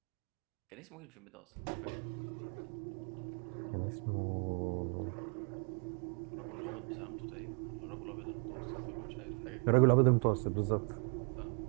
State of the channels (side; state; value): left; quieter; 39.5 dB